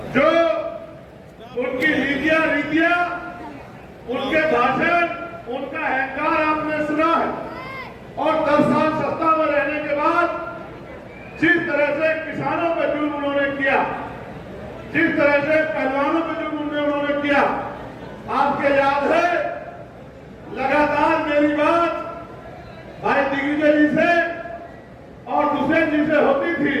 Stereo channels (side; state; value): both; identical; correlation 1.00